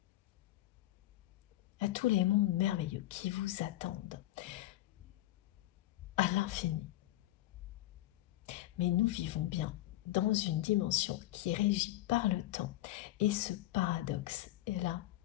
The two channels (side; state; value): right; quieter; 15.6 dB